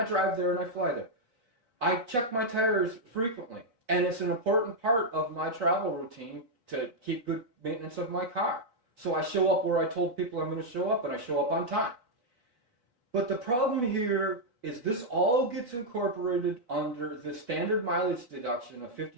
drive there and I fly there. I check my tires frequently, and it's an important part of my travel routine to keep good maintenance of my car. So I show up where I told people I'm going to show up, and I show up on time. But the problem here is this all gets incorporated under the standard mileage deduction of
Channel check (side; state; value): left; late; 4.2 ms